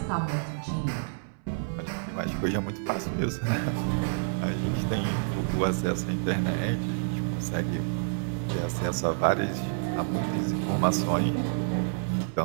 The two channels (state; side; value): silent; left; 59 dB below the other